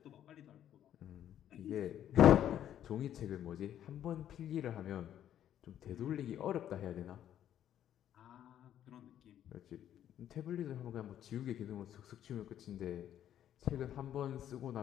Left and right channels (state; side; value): quieter; right; 10.8 dB